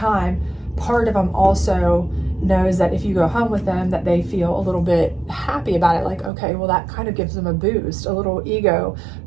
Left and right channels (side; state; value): left; drops out; at 6.3 s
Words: part of them also knows that if you go home with them, that they feel a little bit happy about it. Like, okay, well, that kind of gives them a boost, a little ego